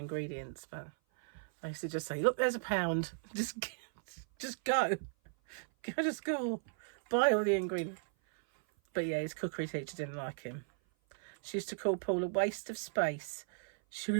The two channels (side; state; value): left; silent; 54 dB below the other